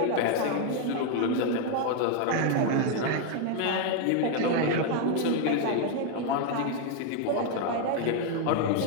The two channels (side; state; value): both; different; correlation 0.01